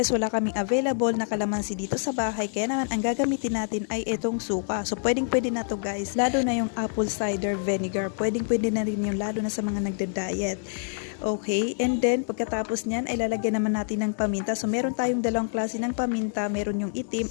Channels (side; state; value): right; silent; 60 dB below the other